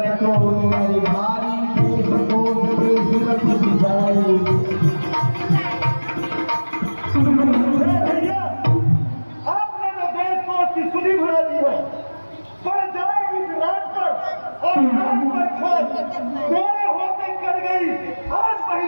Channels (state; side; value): inverted; both; correlation -1.00